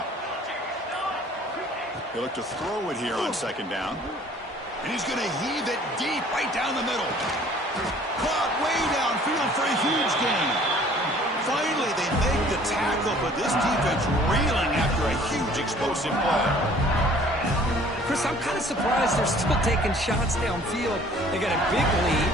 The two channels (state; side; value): normal; both; correlation 0.53